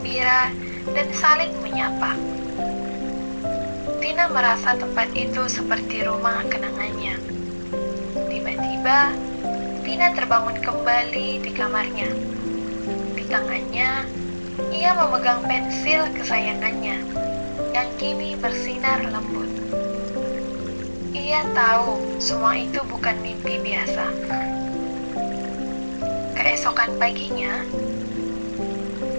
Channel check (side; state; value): both; inverted; correlation -1.00